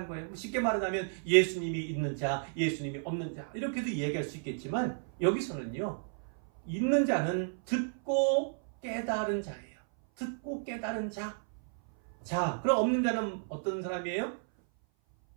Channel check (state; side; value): silent; left; 56 dB below the other